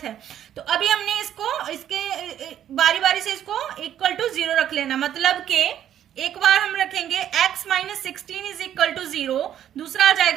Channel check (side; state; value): left; quieter; 10.6 dB